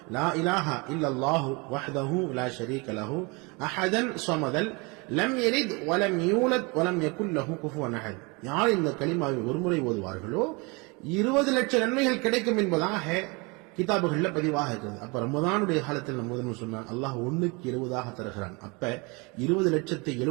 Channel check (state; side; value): quieter; left; 28.6 dB